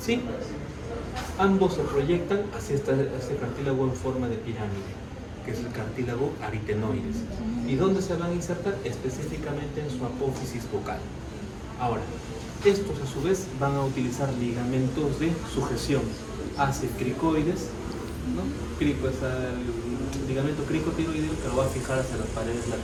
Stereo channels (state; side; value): identical; both; correlation 1.00